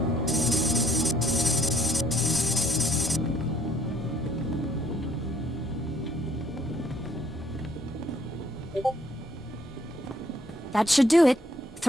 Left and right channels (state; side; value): normal; both; correlation 0.64